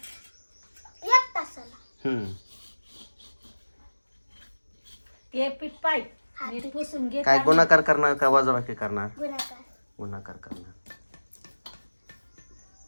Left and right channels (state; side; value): inverted; both; correlation -1.00